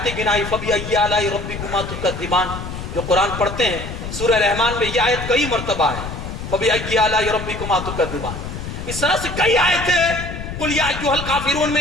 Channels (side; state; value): left; noise; rumble, 8 dB below the sound